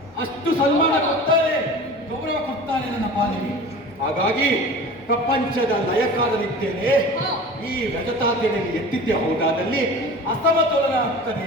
ಅಷ್ಟು ಸನ್ಮಾನ ಕೊಡ್ತಾರೆ, ಗೌರವ ಕೊಡ್ತಾನೆ ನನ್ನ ಪಾಲಿಗೆ. ಹಾಗಾಗಿ ಪ್ರಪಂಚದ ಲಯಕಾರನಿದ್ದೇನೆ. ಈ ರಜತಾದ್ರಿಯಲ್ಲಿ ಎತ್ತಿದ್ದೆ ಹೋದಾದಲ್ಲಿ ಅಸಮತೋಲನ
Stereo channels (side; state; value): both; normal; correlation 0.38